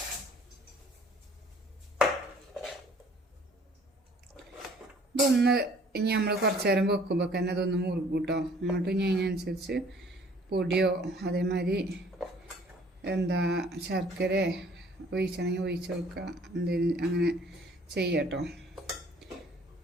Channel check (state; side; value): normal; both; correlation 0.56